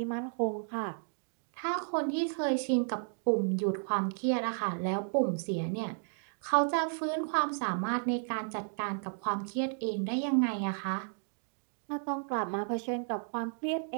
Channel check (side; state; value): left; silent; digital silence